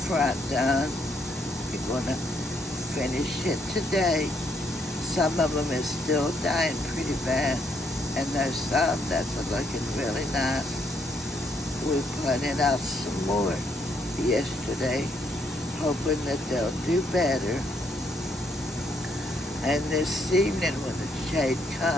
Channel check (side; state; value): both; normal; correlation 0.72